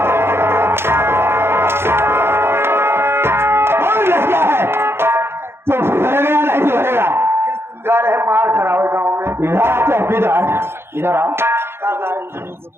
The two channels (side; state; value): left; late; 0.12 ms